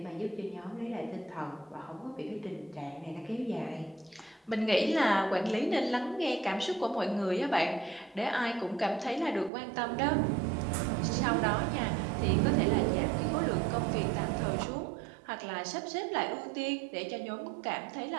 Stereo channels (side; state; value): left; drops out; at 9.5 s